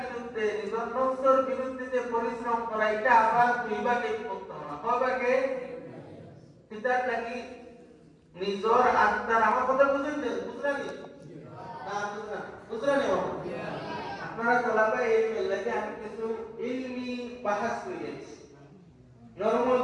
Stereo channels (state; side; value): identical; both; correlation 1.00